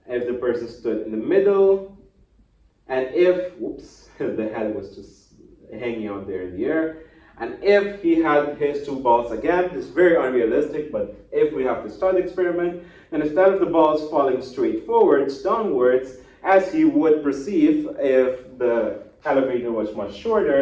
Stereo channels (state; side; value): identical; both; correlation 1.00